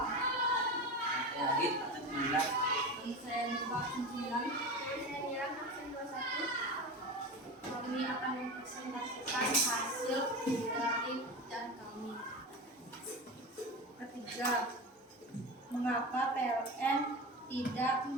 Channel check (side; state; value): both; normal; correlation 0.26